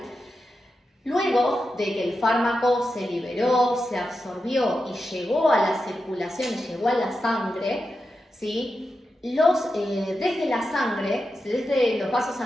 luego de que el fármaco se liberó, se absorbió y llegó a la circulación, llegó a la sangre, ¿sí? Desde la sangre, desde los vasos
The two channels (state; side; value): normal; both; correlation 0.89